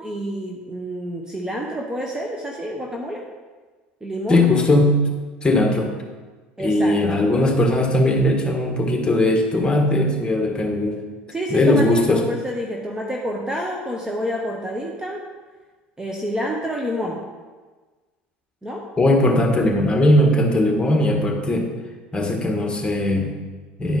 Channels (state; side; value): normal; both; correlation 0.59